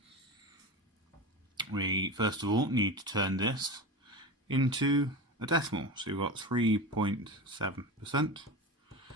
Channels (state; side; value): normal; both; correlation 0.26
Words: We first of all need to turn this into a decimal. So we've got 3.7%,